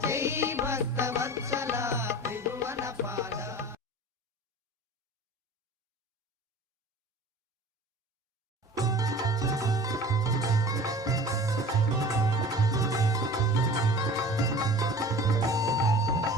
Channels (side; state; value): both; normal; correlation 0.41